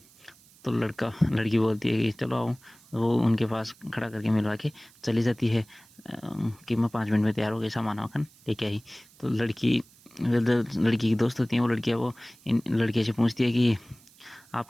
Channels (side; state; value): right; noise; hiss, 27 dB below the sound